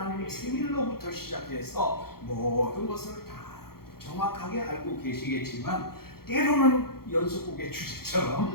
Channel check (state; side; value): late; right; 0.94 ms